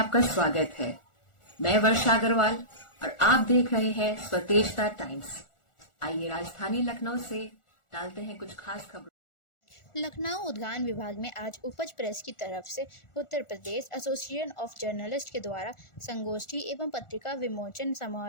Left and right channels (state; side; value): late; right; 1.4 ms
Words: स्वागत है। मैं वर्षा अग्रवाल और आप देख रहे हैं स्वतेजता टाइम्स। आइए राजधानी लखनऊ से डालते हैं कुछ खास खबरों। लखनऊ उद्यान विभाग में आज उपज प्रेस की तरफ से Uttar Pradesh association of journalist के द्वारा संगोष्ठी एवं पत्रिका विमोचन